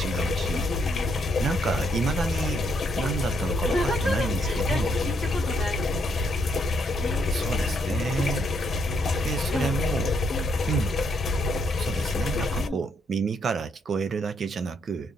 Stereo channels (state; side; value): normal; both; correlation 0.74